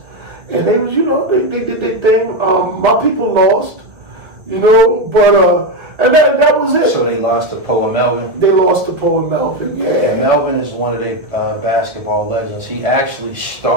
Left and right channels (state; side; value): late; left; 1.9 ms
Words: And they was, you know, they did their thing. My people lost, you know, but and that was it. So they lost to Poe and Melvin? They lost to Poe and Melvin, yeah. And Melvin is one of their basketball legends. He actually